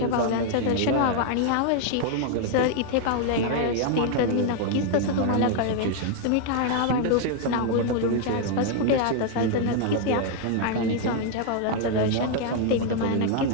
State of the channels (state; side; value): different; both; correlation 0.00